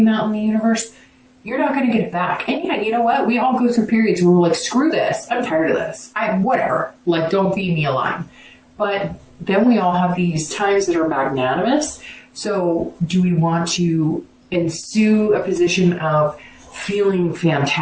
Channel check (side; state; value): both; identical; correlation 1.00